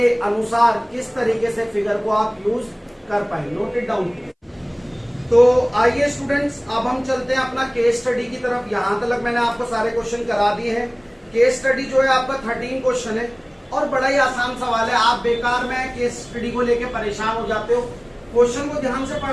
अनुसार किस तरीके से फिगर को आप यूज कर पाए। Note it down. तो आइए स्टूडेंट्स, अब हम चलते हैं अपना केस स्टडी की तरफ। यहां तक मैंने आपको सारे क्वेश्चन करा दिए हैं। केस स्टडी जो है आपका 13 क्वेश्चन है और बड़ा ही आसान सवाल है। आप बेकार में केस स्टडी को लेके परेशान हो जाते हो, क्वेश्चन को ध्यान से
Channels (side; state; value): both; identical; correlation 1.00